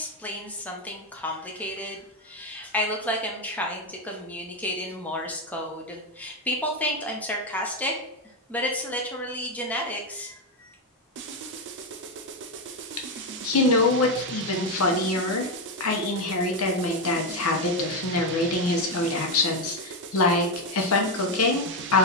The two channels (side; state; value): both; normal; correlation 0.07